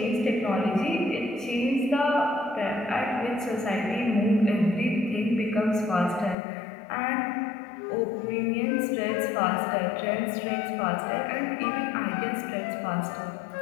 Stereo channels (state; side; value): drops out; right; at 6.4 s